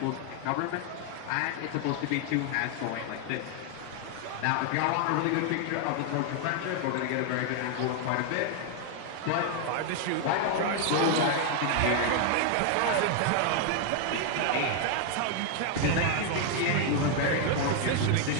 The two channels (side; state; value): both; different; correlation 0.00